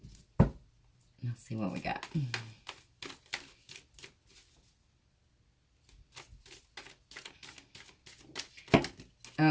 Let's see what we got.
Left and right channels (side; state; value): both; identical; correlation 1.00